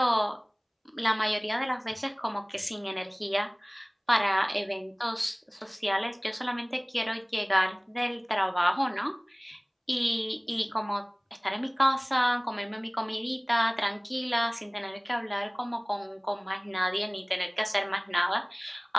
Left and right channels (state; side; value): identical; both; correlation 1.00